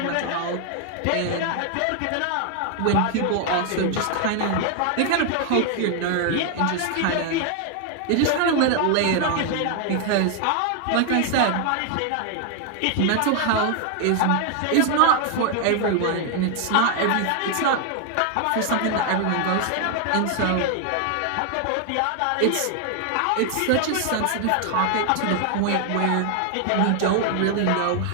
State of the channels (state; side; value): different; both; correlation 0.00